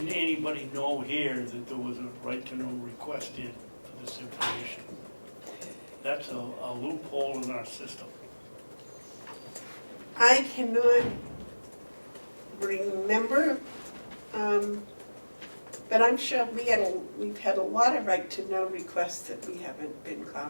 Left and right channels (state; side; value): inverted; both; correlation -1.00